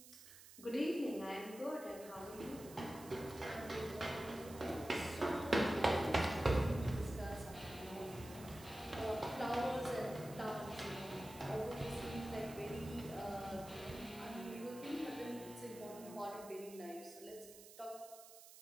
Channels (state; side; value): noise; right; hiss, 17 dB below the sound